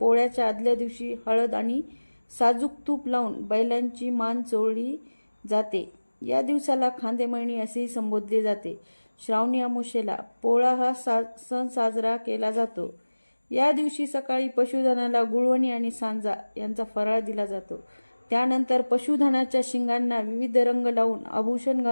आदल्या दिवशी हळद आणि साजूक तूप लावून बैलांची मान चोळली जाते। या दिवसाला खांदेमळणी असेही संबोधले जाते। श्रावणी अमावस्येला पोळा हा सण साजरा केला जातो। या दिवशी सकाळी पशुधनाला गुळवणी आणि सांजा यांचा फराळ दिला जातो। त्यानंतर पशुधनाच्या शिंगांना विविध रंग लावून आभूषण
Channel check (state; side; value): inverted; both; correlation -1.00